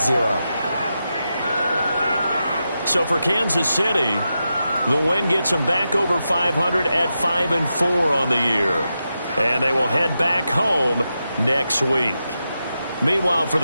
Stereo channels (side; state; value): both; inverted; correlation -0.88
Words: 0. So for Kansas City, the win gets them back over 500 at 5-4 on the year. And they will head back home next week. Meanwhile, for